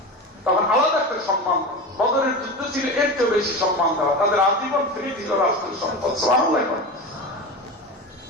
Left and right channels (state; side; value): normal; both; correlation 0.26